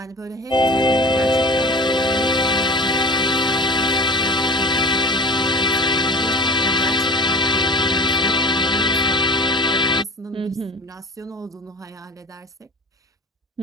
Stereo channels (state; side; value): normal; both; correlation 0.39